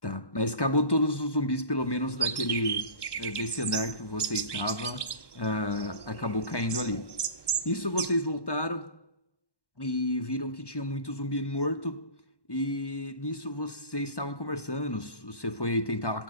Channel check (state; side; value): late; right; 1.1 ms